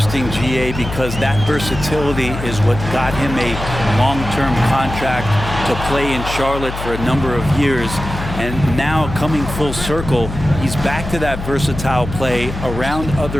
GA, because that versatility is what got him a long-term contract to play in Charlotte for a number of years. And now coming full circle, he's back to that versatile play around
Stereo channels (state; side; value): noise; left; hum, 8 dB below the sound